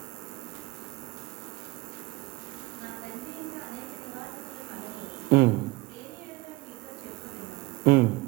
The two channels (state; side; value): quieter; left; 21.4 dB